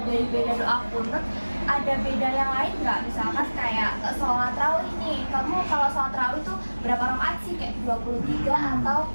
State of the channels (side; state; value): both; inverted; correlation -1.00